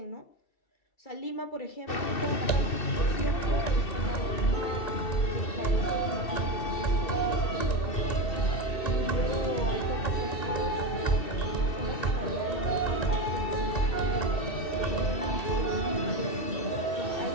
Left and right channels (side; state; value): right; late; 2.7 ms